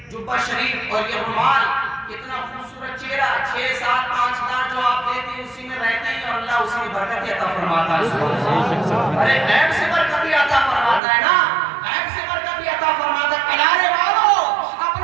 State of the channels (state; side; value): drops out; left; at 11.0 s